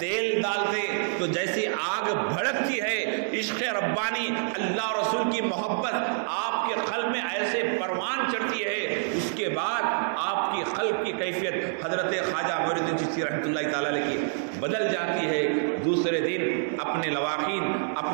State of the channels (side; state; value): left; silent; digital silence